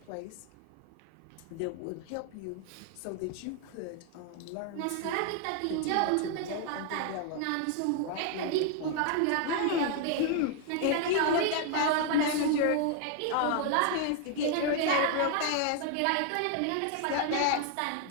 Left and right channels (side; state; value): both; different; correlation 0.00